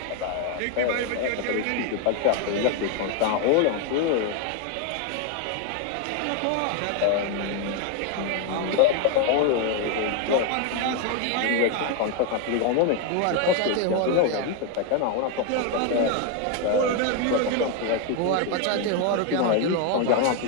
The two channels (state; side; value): different; both; correlation 0.01